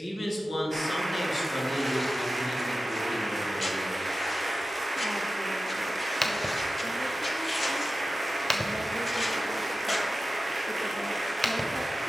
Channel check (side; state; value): both; normal; correlation 0.94